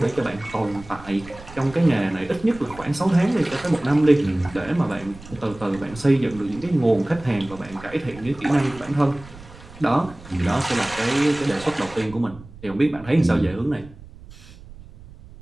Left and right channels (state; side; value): noise; right; rumble, 19 dB below the sound